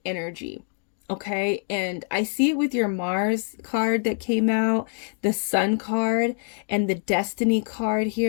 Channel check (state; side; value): silent; right; 62 dB below the other